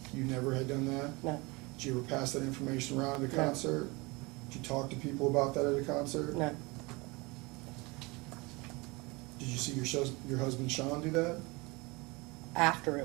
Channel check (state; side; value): quieter; left; 25.5 dB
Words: You never had done that? No. Did you ever pass that information around at a No. concert? Did you talk to people about that at a concert? No. Did you see your husband Sean do that? After